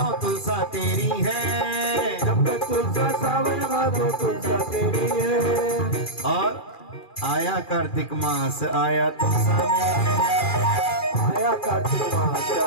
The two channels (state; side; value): late; right; 2.4 ms